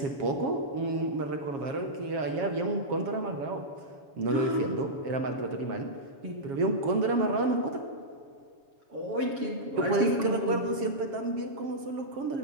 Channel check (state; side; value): late; left; 7.3 ms